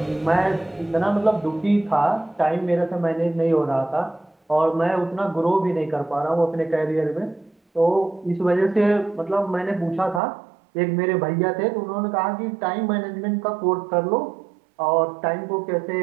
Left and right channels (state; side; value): drops out; left; at 10.2 s